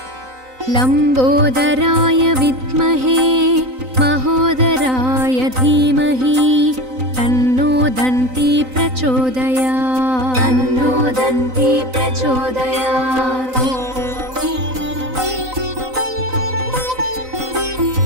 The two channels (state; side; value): late; left; 3.9 ms